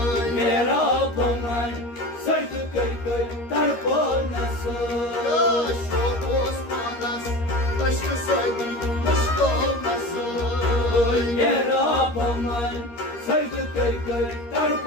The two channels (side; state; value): right; late; 13 ms